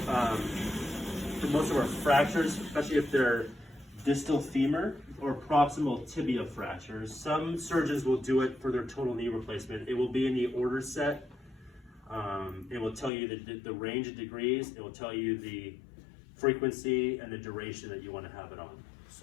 most of our fractures, especially if they're distal femur or proximal tibia fractures. Some surgeons will do it for their total knee replacement. It will be in the order set. It will tell you the range of degrees. It will tell you the frequency and the duration that you want to have it on.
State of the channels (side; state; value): right; drops out; at 13.1 s